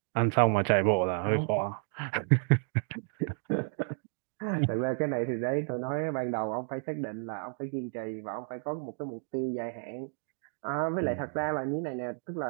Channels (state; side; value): silent; left; 57 dB below the other